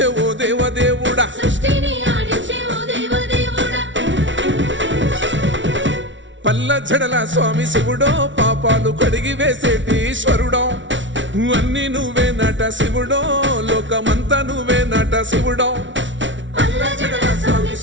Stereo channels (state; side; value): late; left; 0.55 ms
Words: ఓ దేవదేవుడా పల్ల జడల స్వామి శివుడో పాపాలు కడిగి వేసేటి ఈశ్వరుడో అన్ని నువ్వే నట శివుడో లోకమంతా నువ్వే నట శివుడో పల్ల జడల స్వామి